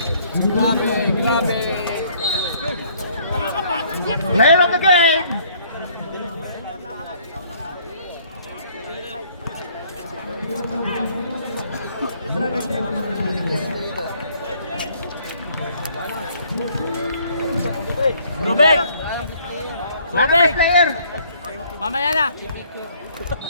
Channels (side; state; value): both; inverted; correlation -0.61